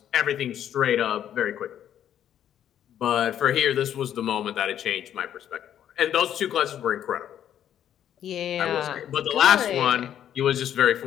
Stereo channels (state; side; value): quieter; right; 10.3 dB